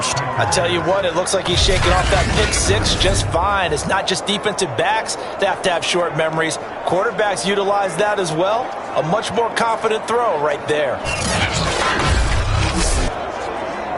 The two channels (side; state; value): both; identical; correlation 1.00